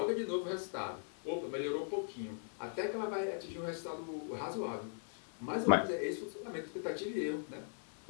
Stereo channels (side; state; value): right; silent; 51 dB below the other